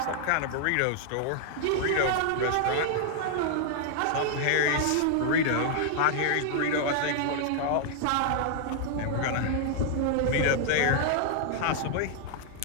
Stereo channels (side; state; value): both; different; correlation 0.00